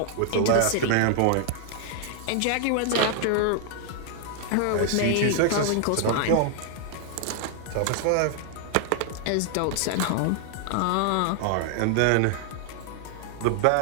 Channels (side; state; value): both; different; correlation 0.00